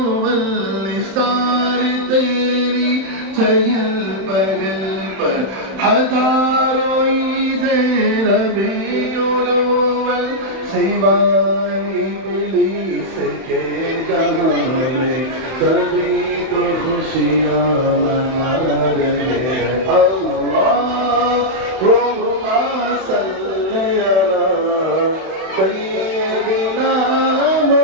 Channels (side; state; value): left; late; 31 ms